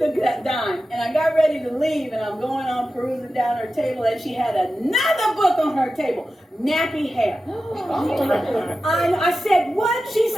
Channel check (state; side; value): normal; both; correlation 0.93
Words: the dime, and I got ready to leave, and I'm going on perusing down her table, and she had another book on her table, Nappy Hair. I said, what? She